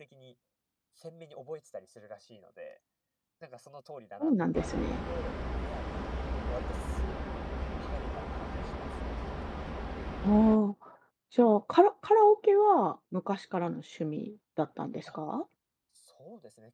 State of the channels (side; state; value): both; identical; correlation 1.00